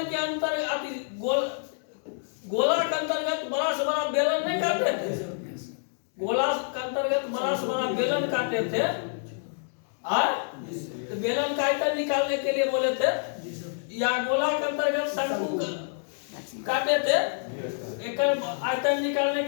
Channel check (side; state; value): right; silent; digital silence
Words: के अंतर्गत गोला के अंतर्गत बड़ा से बड़ा बेलन नहीं काटते थे, गोला के अंतर्गत बड़ा से बड़ा बेलन काटते थे, तो बेलन का आयतन निकालने के लिए बोले थे, या गोला के अंतर्गत शंकु काटे थे, एक आयतन निकालने